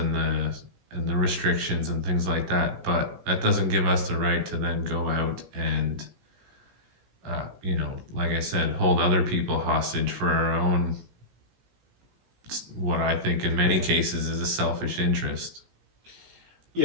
the restrictions and things like that. But that doesn't give us the right to then go out and, like I said, hold other people hostage for our own what I think in many cases is a selfish interest.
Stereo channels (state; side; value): late; left; 17 ms